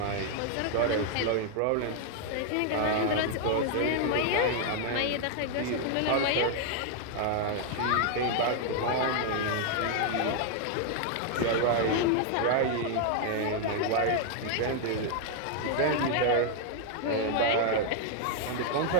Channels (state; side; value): different; both; correlation 0.00